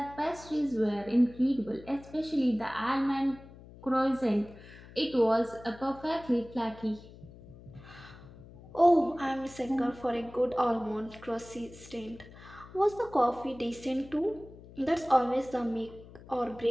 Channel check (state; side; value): noise; left; hum, 19 dB below the sound